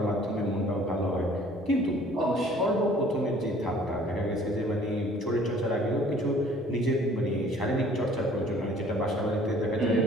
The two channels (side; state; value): both; normal; correlation 0.54